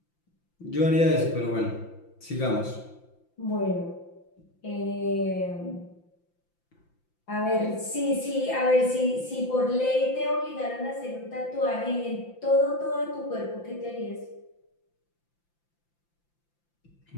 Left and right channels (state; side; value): late; right; 5.8 ms